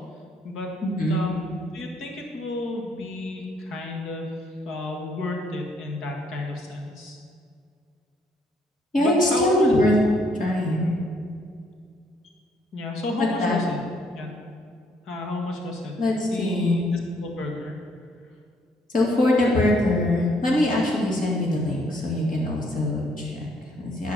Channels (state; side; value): normal; both; correlation 0.68